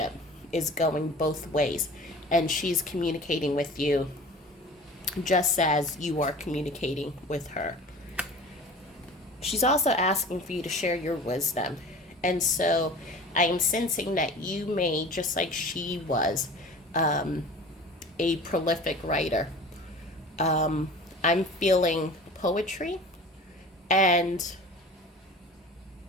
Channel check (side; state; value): both; normal; correlation 0.40